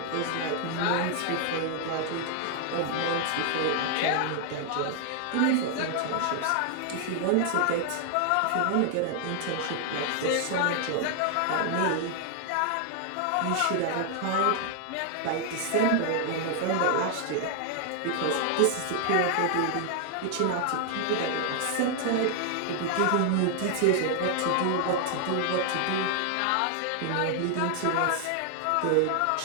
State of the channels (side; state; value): both; different; correlation 0.00